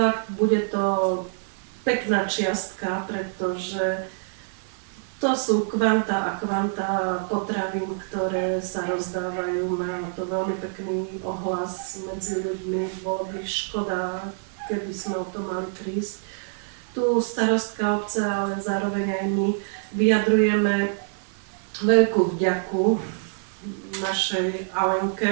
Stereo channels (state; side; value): silent; left; 61 dB below the other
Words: bude to pekná čiastka, pretože to sú kvanta a kvanta potravín, ktoré sa rozdávajú. Má to veľmi pekný ohlas medzi ľuďmi. Bolo by škoda, keby sme o to mali prísť. Tu starostka obce, ale zároveň aj my vyjadrujeme veľkú vďaku našej